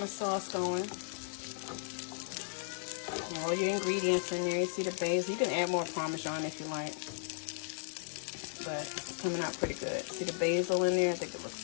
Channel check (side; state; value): right; silent; 54 dB below the other